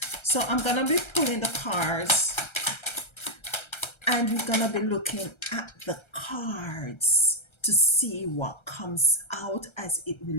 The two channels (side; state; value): right; late; 1.3 ms